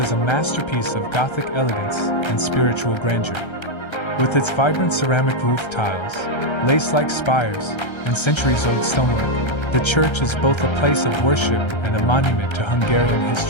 a masterpiece of Gothic elegance and spiritual grandeur. With its vibrant ceramic roof tiles, lace-like spires, and centuries-old stonework, the church is both a place of worship and a monument to Hungarian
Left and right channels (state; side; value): late; right; 1.3 ms